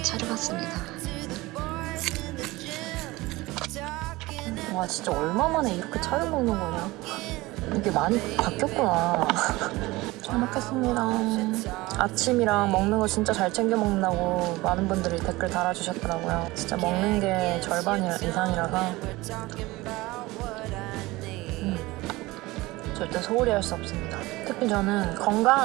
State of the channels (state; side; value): quieter; left; 20.4 dB